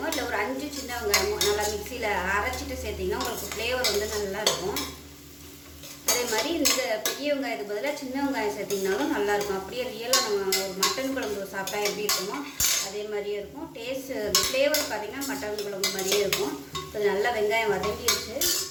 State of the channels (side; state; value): both; identical; correlation 1.00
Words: இல்லை ஒரு 5 சின்ன வெங்காயமோ நல்லா மிக்சியில் அரைச்சிட்டு சேர்த்திங்கன்னா உங்களுக்கு ஃப்ளேவர் நல்லா இருக்கும். அதே மாதிரி இந்த பெரிய வெங்காயத்துக்கு பதிலாக சின்ன வெங்காயம் சேர்த்திங்கனாலும் நல்லாயிருக்கும். அப்படியே ரியலாக நம்ம ஒரு மட்டன் குழம்பு சாப்பிட்டா எப்படி இருக்குமோ அதே மாதிரியே இருக்கும். டேஸ்ட்டு ஃப்ளேவர் பார்த்திங்கன்னா மட்டன் குழம்பு மாதிரியே இருக்கும். இப்போ நல்லா வெங்காயம் வதங்கிடுச்சு.